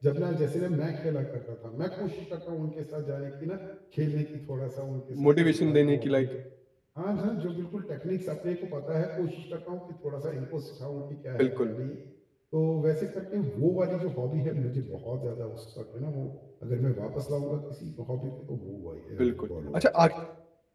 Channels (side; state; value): both; identical; correlation 1.00